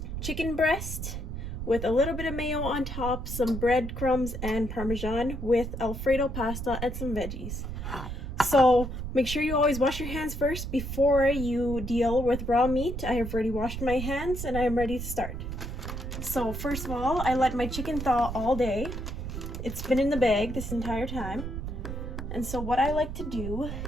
chicken breast with a little bit of mayo on top, some breadcrumbs and Parmesan with Alfredo pasta and some veggies. So make sure you always wash your hands first before you deal with raw meat. I have already washed my hands and I am ready to start. So first of all, I let my chicken thaw all day. It's been in the bag this entire time. And so what I like to do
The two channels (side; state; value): right; noise; rumble, 6 dB below the sound